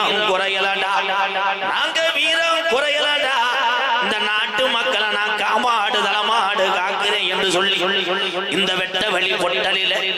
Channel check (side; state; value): both; identical; correlation 1.00